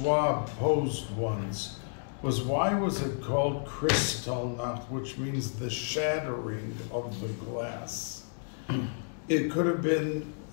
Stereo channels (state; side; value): silent; right; digital silence